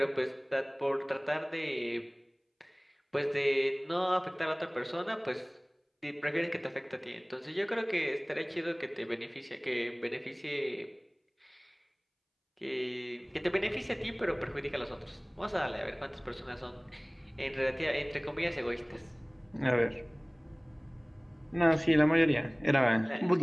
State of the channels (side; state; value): both; identical; correlation 1.00